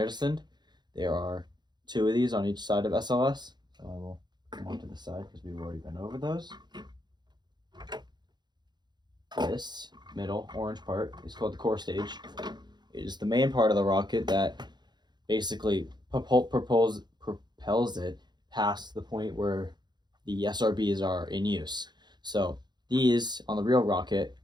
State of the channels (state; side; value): late; left; 0.21 ms